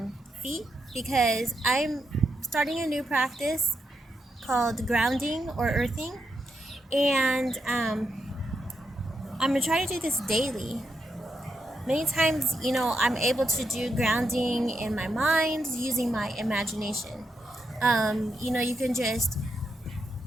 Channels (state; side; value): normal; both; correlation 0.82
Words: feet because I'm starting a new practice called grounding or earthing, and I'm going to try to do this daily. Many times, I'm able to do grounding in my mind using my imagination. You can just,